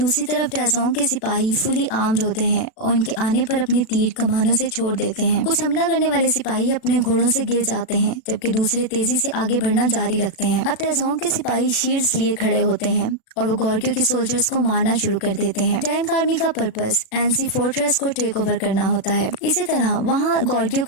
तरफ टैजोंग के सिपाही फुली आर्म्ड होते हैं और उनके आने पर अपने तीर कमानों से छोड़ देते हैं। कुछ हमला करने वाले सिपाही अपने घोड़ों से गिर जाते हैं, जबकि दूसरे तेजी से आगे बढ़ना जारी रखते हैं। अब टैजोंग के सिपाही शील्ड्स लिए खड़े होते हैं और वो गॉर्गियो के सोल्जर्स को मारना शुरू कर देते हैं। टैंक आर्मी का पर्पस एनसी फोर्ट्रेस को टेक ओवर करना होता है। इसी तरह वहाँ गॉर्गियो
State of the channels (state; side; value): late; right; 36 ms